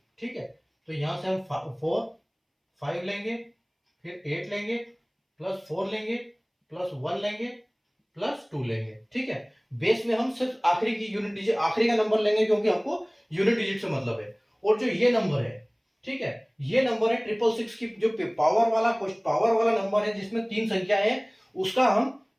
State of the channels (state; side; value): identical; both; correlation 1.00